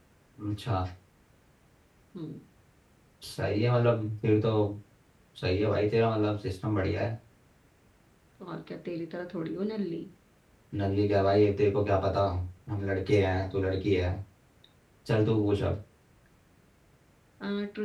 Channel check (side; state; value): both; identical; correlation 1.00